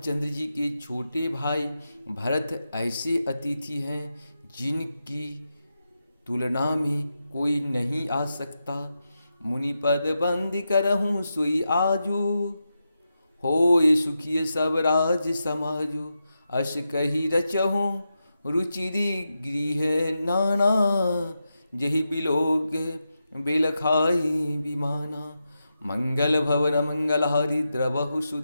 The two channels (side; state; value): both; inverted; correlation -0.88